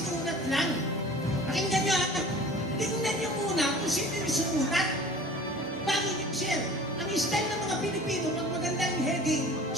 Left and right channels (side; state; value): both; normal; correlation 0.44